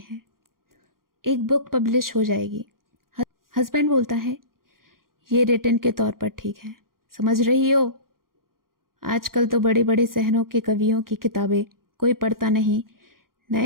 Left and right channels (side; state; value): left; late; 0.92 ms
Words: एक बुक पब्लिश हो जाएगी। हस्बैंड बोलता है, ये रिटन के तौर पर ठीक है, समझ रही हो, आजकल तो बड़े बड़े शहरों के कवियों की किताबें कोई पढ़ता नहीं,